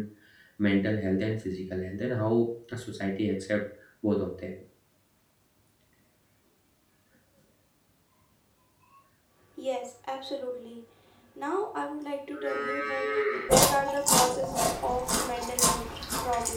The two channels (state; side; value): identical; both; correlation 1.00